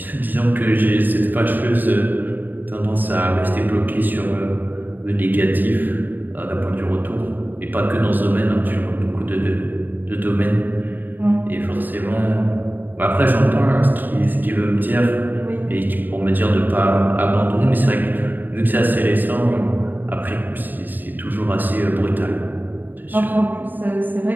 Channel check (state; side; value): late; left; 0.089 ms